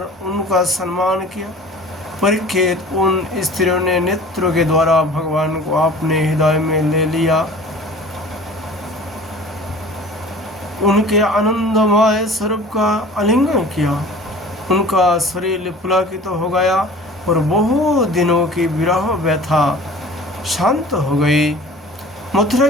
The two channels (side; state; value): both; normal; correlation 0.44